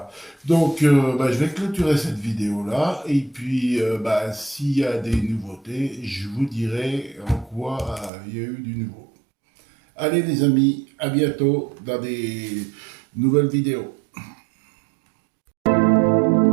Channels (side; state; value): left; drops out; at 8.1 s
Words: Donc, je vais clôturer cette vidéo-là. Et puis, s'il y a des nouveautés, je vous dirai en quoi il y a eu du nouveau. Allez les amis, à bientôt dans des nouvelles vidéos.